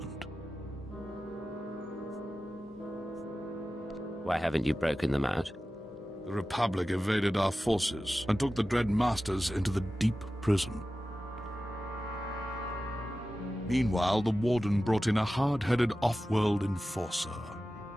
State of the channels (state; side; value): normal; both; correlation 0.94